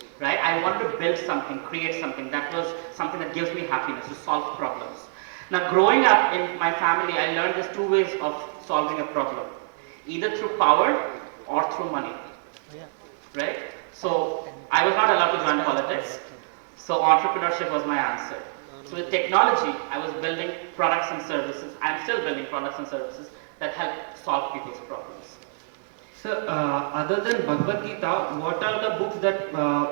right? I wanted to build something, create something. That was something that gives me happiness, to solve problems. Now, growing up in my family, I learned there's 2 ways of solving a problem. Either through power or through money, right? So, I was not allowed to join politics. So, entrepreneurship was my answer. So, with technology, I was building products and services. I'm still building products and services that help solve people's problems. So, other than Bhagavad Gita, what are the books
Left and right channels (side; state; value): left; silent; digital silence